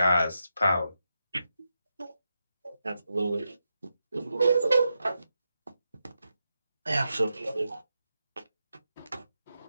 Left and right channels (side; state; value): both; inverted; correlation -0.87